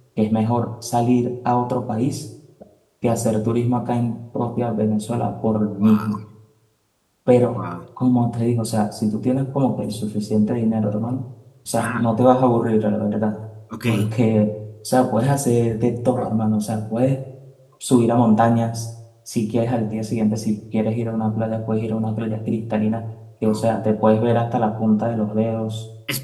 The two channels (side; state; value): both; identical; correlation 1.00